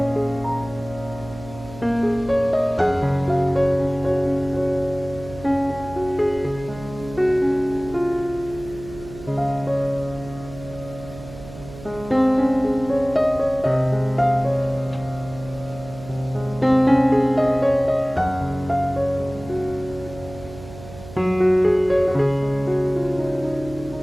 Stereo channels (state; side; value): noise; right; hum, 15 dB below the sound